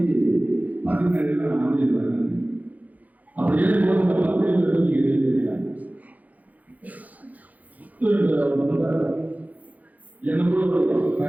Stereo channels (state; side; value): late; left; 0.078 ms